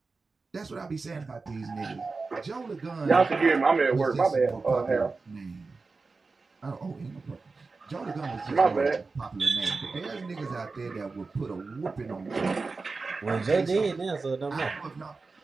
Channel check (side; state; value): left; quieter; 4.1 dB